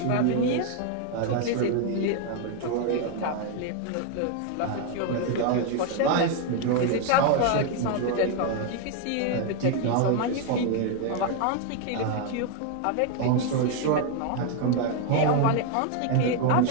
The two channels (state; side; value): different; both; correlation 0.00